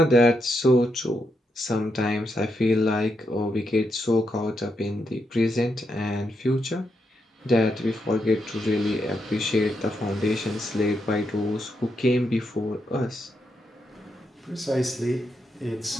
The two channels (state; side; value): normal; both; correlation 0.82